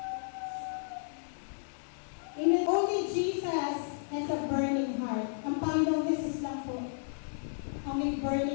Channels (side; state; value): right; silent; digital silence